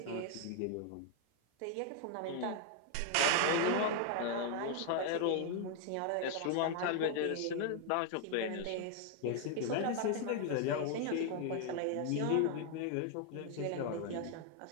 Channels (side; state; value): both; different; correlation 0.00